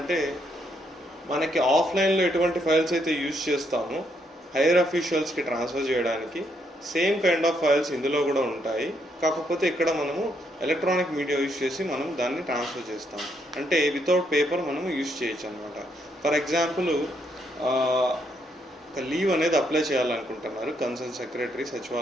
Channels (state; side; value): normal; both; correlation 0.75